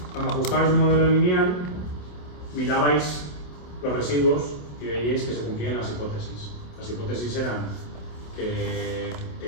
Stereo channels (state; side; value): late; right; 27 ms